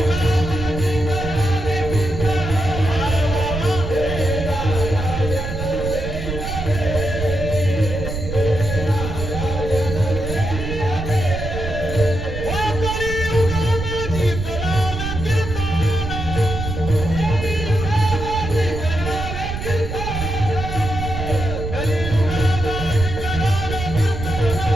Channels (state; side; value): noise; right; rumble, 5 dB below the sound